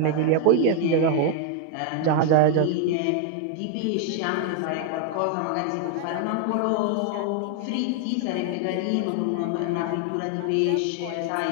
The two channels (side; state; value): both; different; correlation 0.00